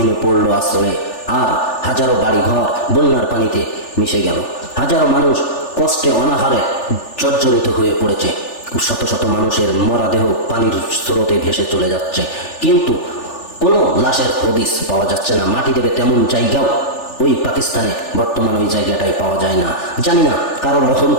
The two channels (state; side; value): late; right; 3.4 ms